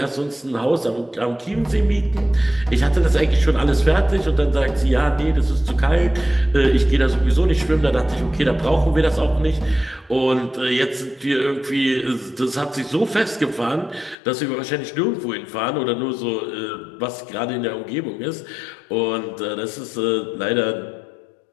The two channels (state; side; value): drops out; right; at 14.2 s